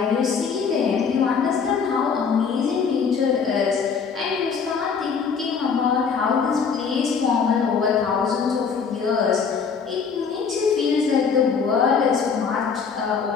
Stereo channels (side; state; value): right; quieter; 6.0 dB